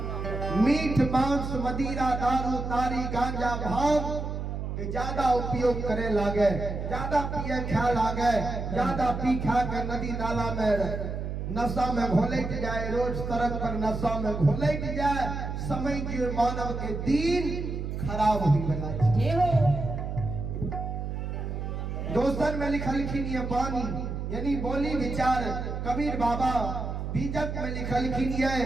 मीठ मांस मदिरा दारू तारी गांजा भांग के ज्यादा उपयोग करे लागे ज्यादा पिए खा लागे ज्यादा पी खा के नदी नाला में नशा में घोलट जाए रोज सड़क पर नशा में घोलट जाए समय के मानव के दिन खराब हुई बना दोस्तन में लिखलखिन ये बानी यानी बोली विचार कबीर बाबा बीजक में लिखलखिन ये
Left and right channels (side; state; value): right; noise; hum, 4 dB below the sound